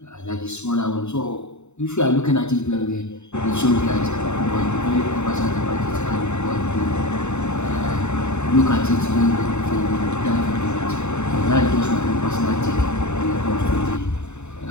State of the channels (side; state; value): right; late; 0.82 ms